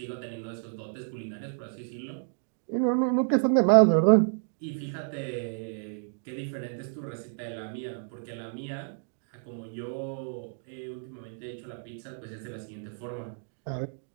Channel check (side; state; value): left; silent; digital silence